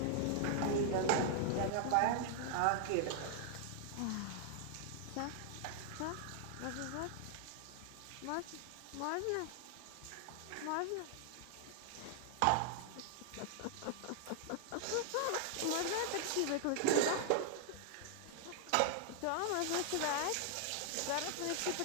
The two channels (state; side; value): different; both; correlation 0.00